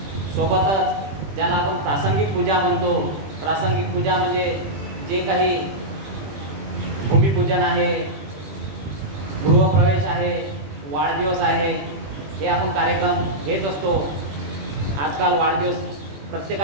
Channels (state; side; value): late; left; 21 ms